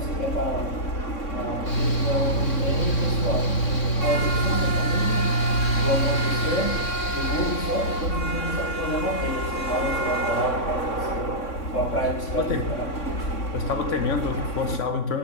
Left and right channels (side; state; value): right; late; 3.6 ms